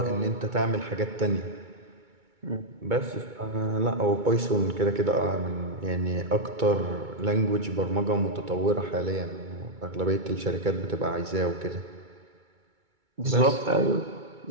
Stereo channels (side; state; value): left; late; 2.2 ms